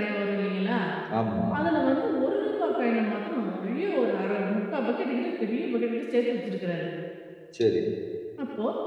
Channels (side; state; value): both; identical; correlation 1.00